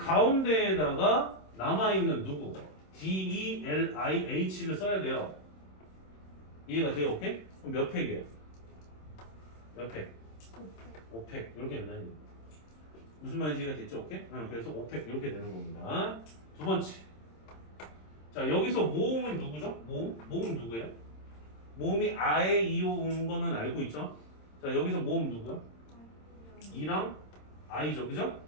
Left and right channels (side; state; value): right; late; 26 ms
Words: 남아있는 누구? DELIH를 써야 돼요. 이해가 돼요? 오케이? 그럼 몇 팩이에요? 몇 팩? 5팩 이렇게 된다는 얘기예요. 무슨 말인지 이해가 됐죠? 오케이? 그래서 5팩 이렇게 되는 겁니다. 두 번째. 자, 여기서 모음은 누구죠? 모음 누구예요? 모음이 아에 이오 온 거는 알고 있죠? 자, 여기서 모음 누구야? 이랑 아이죠, 그죠?